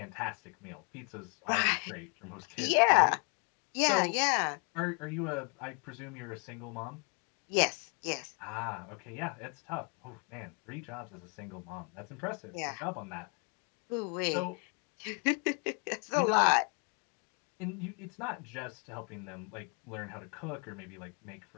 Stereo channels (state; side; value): quieter; right; 36.3 dB